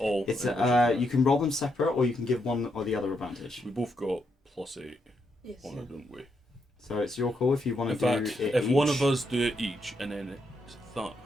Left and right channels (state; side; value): normal; both; correlation 0.79